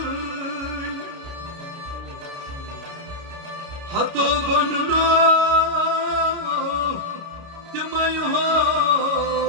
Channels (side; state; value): left; late; 29 ms